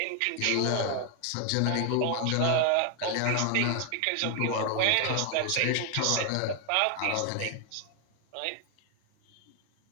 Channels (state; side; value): different; both; correlation 0.00